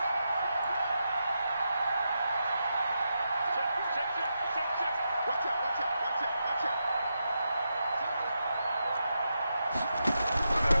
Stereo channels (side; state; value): both; inverted; correlation -0.86